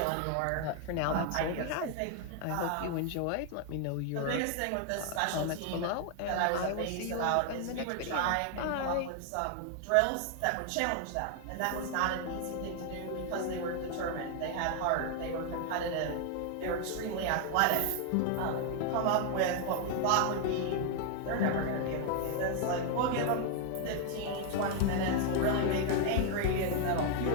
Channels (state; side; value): different; both; correlation 0.00